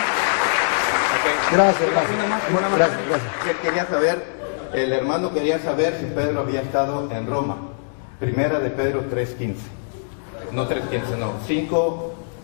Gracias. Quería saber, el hermano quería saber si Pedro había estado en Roma. Primera de Pedro 3:15. No 3:15, no.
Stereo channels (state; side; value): silent; right; digital silence